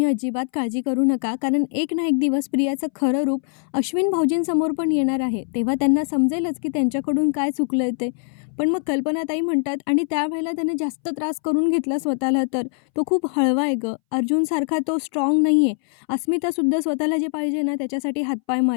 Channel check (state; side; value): silent; right; 62 dB below the other